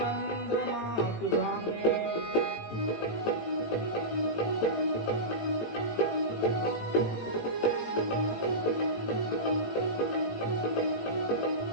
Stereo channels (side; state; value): right; late; 18 ms